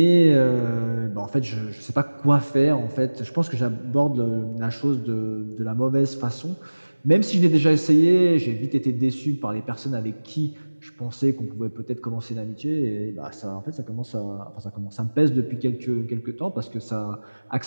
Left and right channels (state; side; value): inverted; both; correlation -1.00